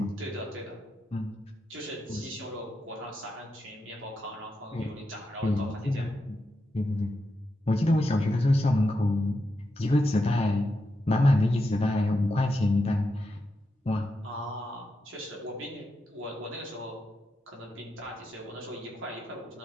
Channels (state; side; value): normal; both; correlation 0.86